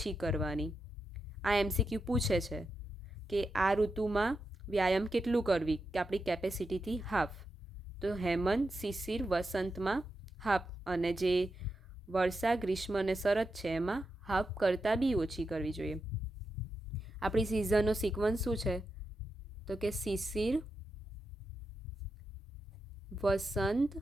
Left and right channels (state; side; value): normal; both; correlation 0.87